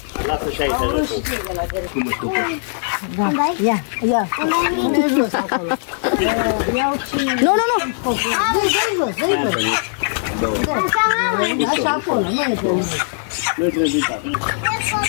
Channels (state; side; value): silent; right; digital silence